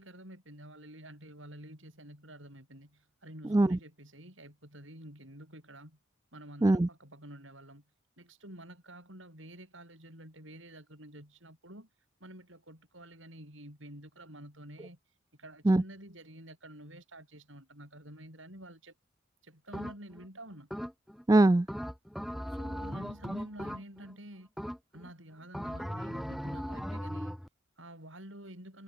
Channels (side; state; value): both; normal; correlation 0.91